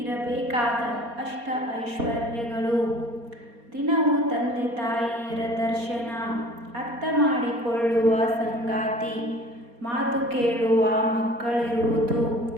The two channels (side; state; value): left; late; 4.2 ms